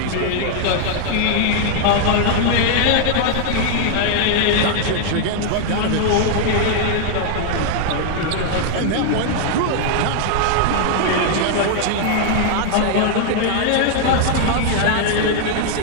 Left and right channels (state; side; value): different; both; correlation 0.00